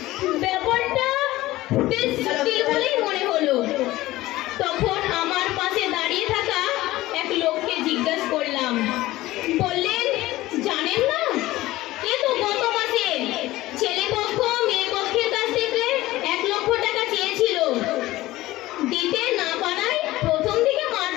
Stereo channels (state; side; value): quieter; right; 17.3 dB